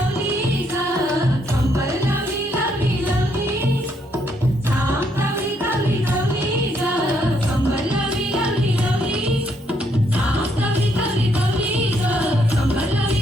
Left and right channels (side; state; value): both; normal; correlation 0.73